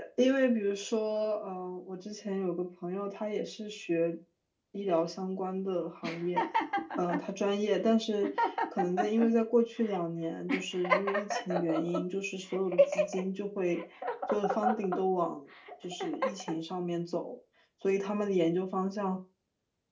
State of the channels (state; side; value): identical; both; correlation 1.00